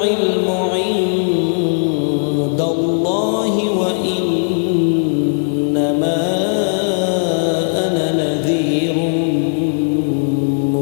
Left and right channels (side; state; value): right; silent; digital silence